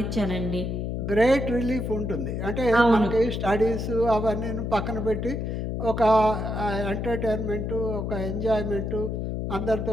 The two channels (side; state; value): left; noise; hum, 2 dB below the sound